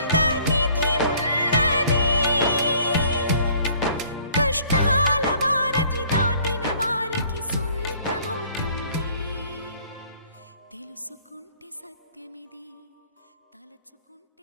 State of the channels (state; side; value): inverted; both; correlation -0.57